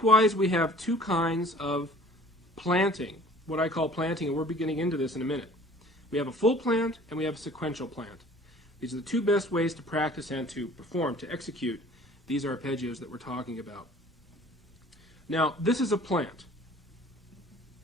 we have two kinds of planting, what I call planting, and we're beginning into this in a minute. We have a full plant and we have a sequential plant. These are the two best ways to practice and to perform, to execute these arpeggios that we're talking about. Now, this is a plant.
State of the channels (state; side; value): normal; both; correlation 0.50